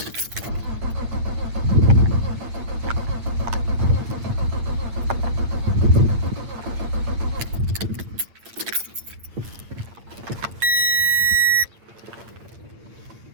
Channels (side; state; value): left; late; 8.7 ms